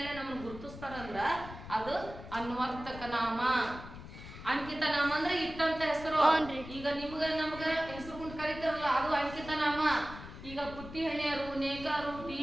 ನಮ್ಮನ್ನು ಗುರುತಿಸ್ತಾರಂದ್ರ ಅದು ಅನ್ವರ್ತಕ ನಾಮ. ಅಂಕಿತ ನಾಮ ಅಂದ್ರೆ ಇಟ್ಟಂತ ಹೆಸರು. ಈಗ ನಿಮ್ಗ ನಮ್ಗ ಹೆಸರು ಕೊಂಡು ಕರೀತಾರಲ್ಲ ಅದು ಅಂಕಿತ ನಾಮ. ಈಗ ಪುಟ್ಟಿ ಹಣಿಯರು, ನೇಕಾರು,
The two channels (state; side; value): noise; left; rumble, 13 dB below the sound